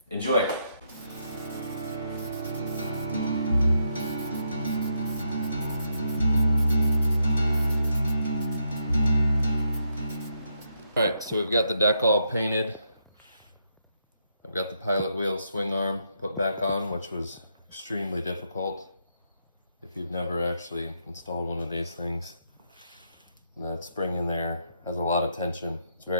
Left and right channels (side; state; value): both; inverted; correlation -0.79